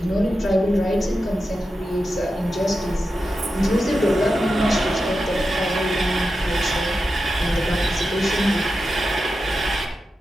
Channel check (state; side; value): normal; both; correlation 0.90